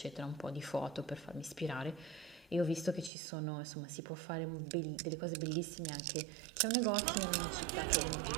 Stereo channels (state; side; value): drops out; left; at 3.1 s